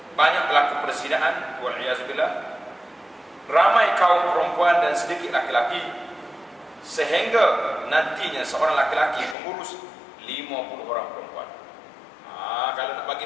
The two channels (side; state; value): right; drops out; at 9.3 s